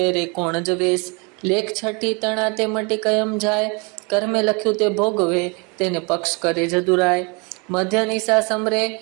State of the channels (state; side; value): quieter; left; 31.1 dB